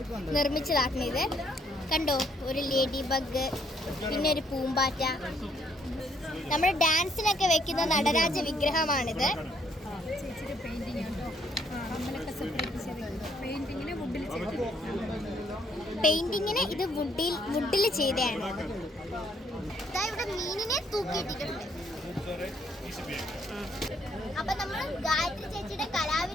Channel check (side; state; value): both; normal; correlation 0.69